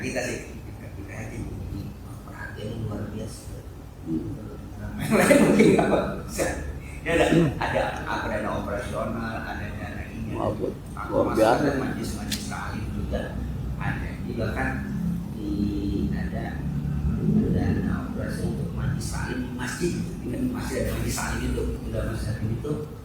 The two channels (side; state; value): both; identical; correlation 1.00